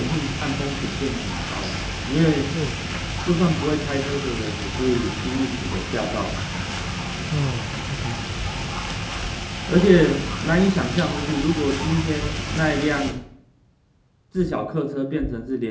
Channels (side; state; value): both; identical; correlation 1.00